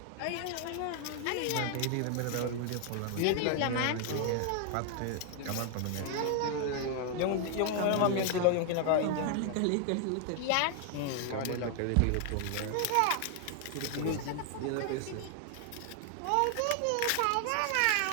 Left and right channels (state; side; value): different; both; correlation 0.00